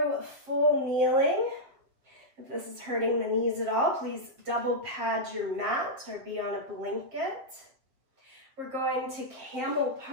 full kneeling. If this is hurting the knees at all, please double pad your mat or be on a blanket. We're going to camel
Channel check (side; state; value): left; late; 7.3 ms